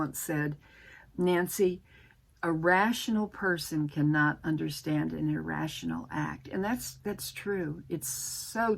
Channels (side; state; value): both; identical; correlation 1.00